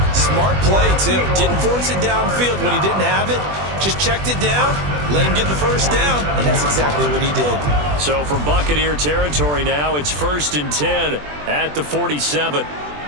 Smart play, too. Didn't force it downfield when he didn't have it. Just checked it down, let him get the first down, and that's exactly what he did. So from Buccaneer territory now, it's 1st and 10 at the 47.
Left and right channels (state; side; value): late; left; 20 ms